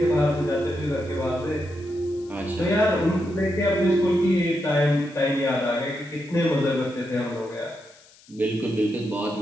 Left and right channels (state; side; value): noise; left; hiss, 26 dB below the sound